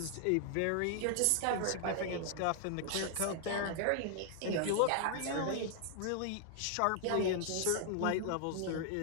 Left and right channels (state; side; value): different; both; correlation 0.00